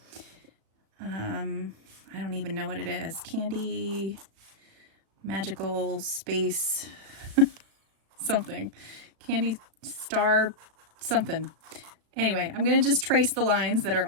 I don't even know what it is. Candy, magical space, something. Candy star, something. Anyway, I'm going to just trace the lines that are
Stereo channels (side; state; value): left; late; 36 ms